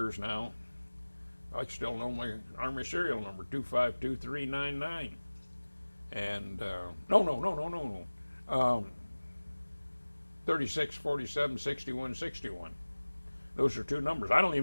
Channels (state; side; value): inverted; both; correlation -1.00